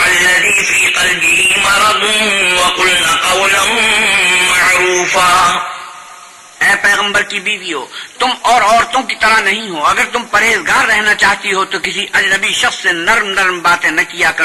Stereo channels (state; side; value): identical; both; correlation 1.00